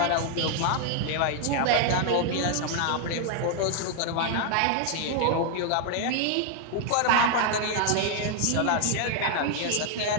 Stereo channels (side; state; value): both; different; correlation 0.00